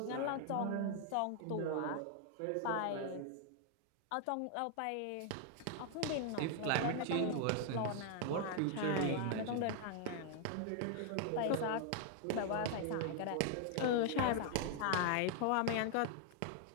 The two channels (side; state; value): both; different; correlation 0.00